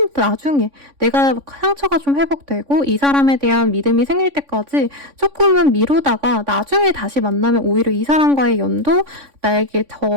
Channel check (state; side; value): late; left; 3.5 ms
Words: 나중에 내가 상처가 좀 회복되고 이 사람에 대한 믿음이 생길 때까지 조금은 미루다가 나중에 다시 만나면 오히려 이 사람과의 연도 나에게